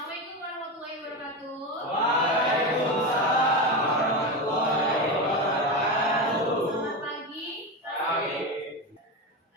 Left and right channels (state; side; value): normal; both; correlation 0.18